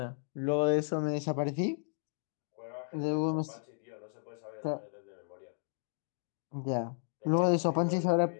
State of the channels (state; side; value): silent; right; digital silence